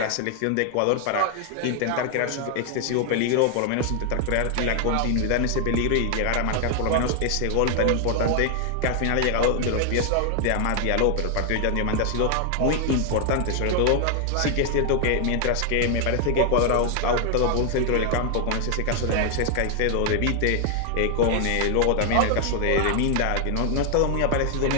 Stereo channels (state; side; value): different; both; correlation 0.00